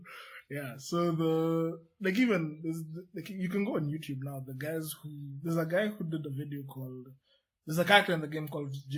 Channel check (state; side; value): identical; both; correlation 1.00